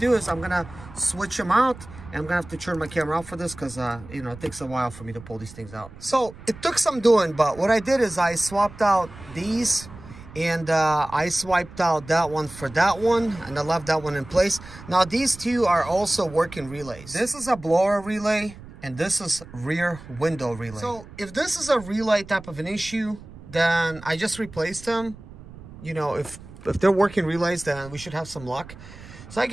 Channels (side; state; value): right; noise; rumble, 17 dB below the sound